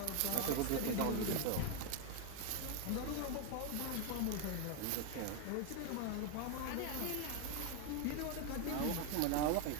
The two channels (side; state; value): both; different; correlation 0.01